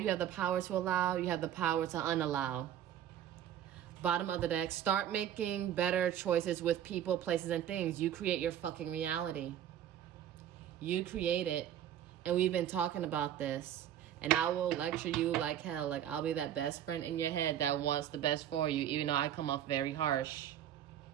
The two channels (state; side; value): quieter; left; 10.5 dB